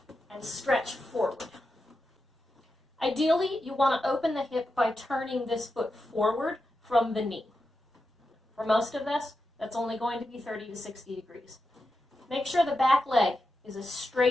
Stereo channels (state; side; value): normal; both; correlation 0.89